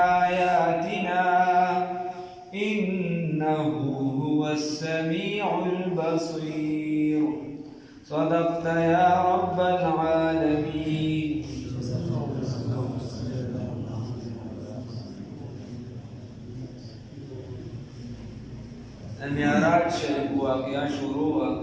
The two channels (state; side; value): identical; both; correlation 1.00